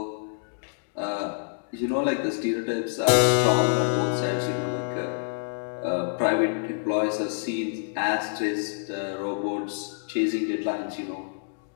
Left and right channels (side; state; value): right; silent; digital silence